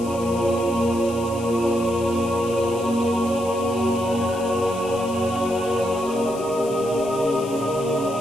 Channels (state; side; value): noise; left; hiss, 17 dB below the sound